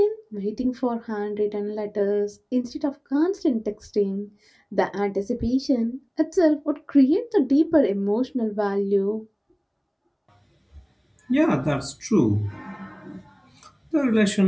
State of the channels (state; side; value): identical; both; correlation 1.00